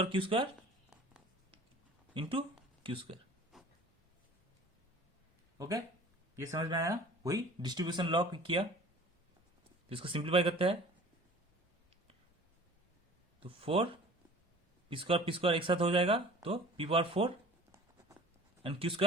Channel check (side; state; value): both; normal; correlation 0.45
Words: Q square into Q square. Okay, ये समझ में आया? वही डिस्ट्रीब्यूशन लॉ किया, इसको सिंप्लीफाई करते हैं। तो 4 पी स्क्वायर एक साथ हो जाएगा, तो P power 4 and Q